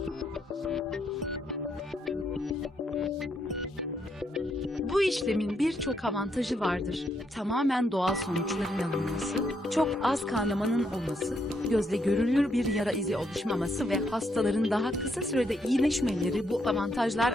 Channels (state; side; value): normal; both; correlation 0.76